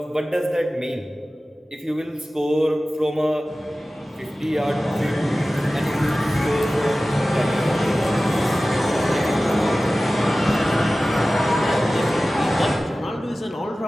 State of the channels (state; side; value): normal; both; correlation 0.96